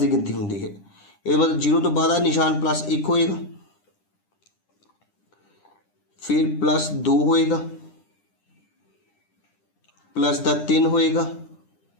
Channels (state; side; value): late; right; 9.9 ms